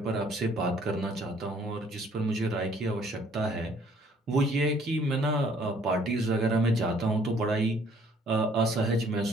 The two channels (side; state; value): both; normal; correlation 0.60